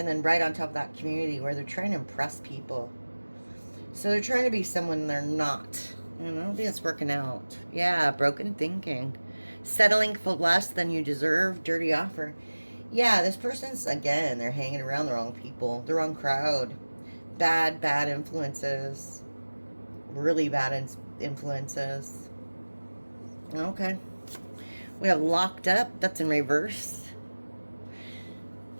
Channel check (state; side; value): inverted; both; correlation -1.00